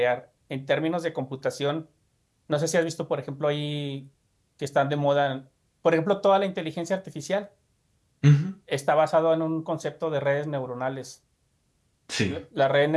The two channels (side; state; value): both; identical; correlation 1.00